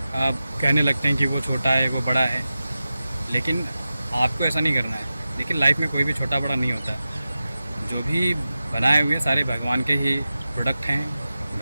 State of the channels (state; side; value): inverted; both; correlation -0.94